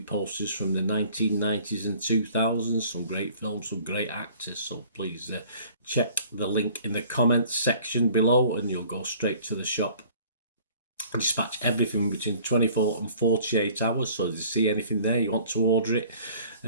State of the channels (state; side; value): inverted; both; correlation -0.52